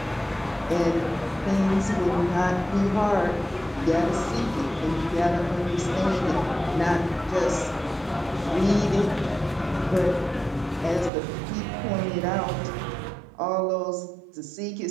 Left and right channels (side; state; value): left; drops out; at 11.1 s